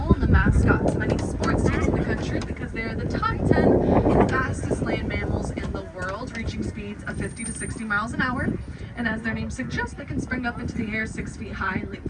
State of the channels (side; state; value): both; identical; correlation 1.00